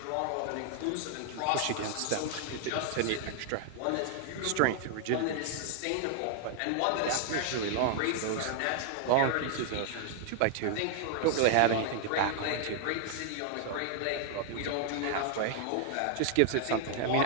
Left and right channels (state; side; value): different; both; correlation 0.00